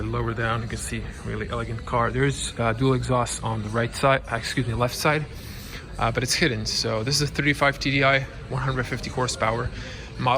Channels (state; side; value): identical; both; correlation 1.00